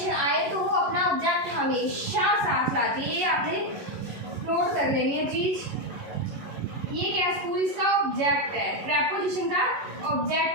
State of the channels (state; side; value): late; left; 11 ms